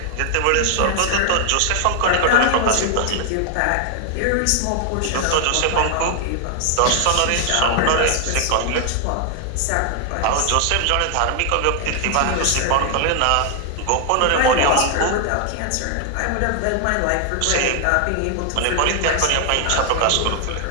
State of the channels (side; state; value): both; different; correlation 0.00